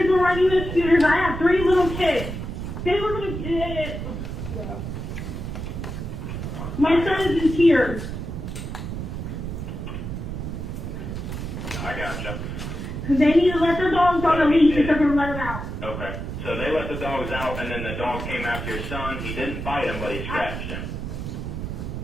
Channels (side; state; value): right; noise; rumble, 6 dB below the sound